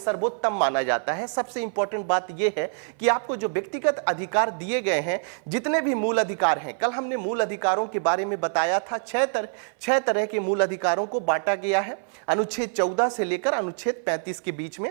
माना जाता है। सबसे इंपॉर्टेंट बात यह है कि आपको जो व्यक्तिगत अधिकार दिए गए हैं, जितने भी मूल अधिकार हैं, कल हमने मूल अधिकारों के बारे में बताया था, छह तरह के मूल अधिकारों को बांटा गया है अनुच्छेद 14 से लेकर अनुच्छेद 35 के बीच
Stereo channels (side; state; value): left; silent; 58 dB below the other